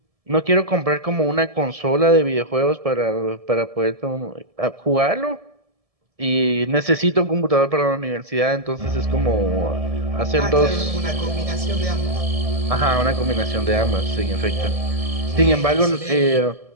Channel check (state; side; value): late; left; 1.7 ms